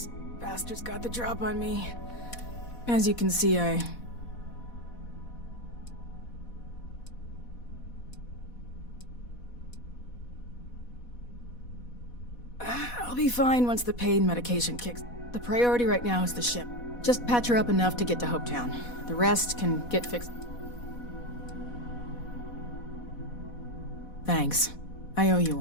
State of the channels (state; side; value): late; right; 4.1 ms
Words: Bastards got the drop on me. As you can see, I'll be fine once the pain medication kicks. The priority right now is the ship. Just patch her up enough to get to Hopetown. The rest can get fixed. Thanks. I owe you